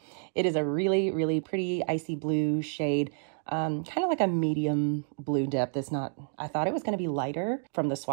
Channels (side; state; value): left; silent; 58 dB below the other